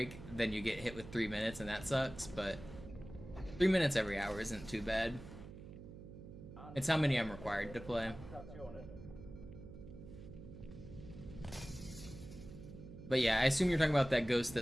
then you get hit with 3 minutes and that sucks, but 3 minutes every hour isn't too bad. It's how many I'm required to play. Stationen. But yeah, I assume you're talking about that ghost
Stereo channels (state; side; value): noise; right; hum, 14 dB below the sound